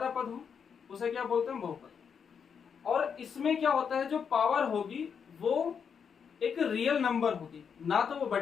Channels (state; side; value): quieter; right; 6.8 dB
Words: पद हो, उसे क्या बोलते हैं, बहुपद। और इसमें क्या होता है, जो पावर होगी वो एक रियल नंबर होगी, ना तो वो